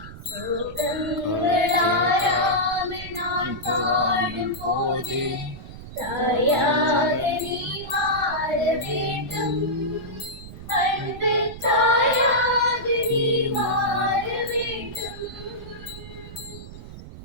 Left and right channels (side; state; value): right; noise; rumble, 13 dB below the sound